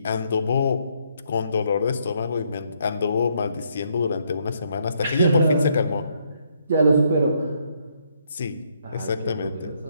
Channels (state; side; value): inverted; both; correlation -0.73